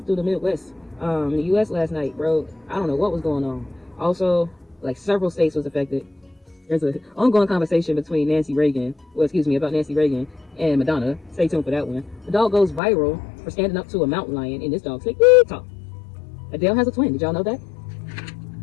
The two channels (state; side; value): drops out; right; at 12.8 s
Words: through the Midwest in the U.S. last night, bro. I don't know what was going on. Also, like, several states was affected. There's an ongoing conversation between about Nancy Reagan and Madonna. Stay tuned for that one. The dog goes viral for standing up to a mountain lion, and this dog say, talk. Adele has a twin. Did y'all know that?